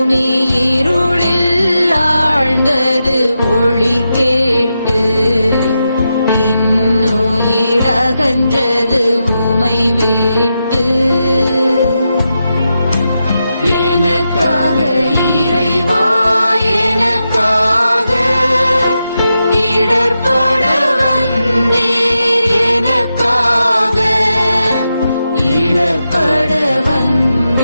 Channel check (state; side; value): inverted; both; correlation -0.87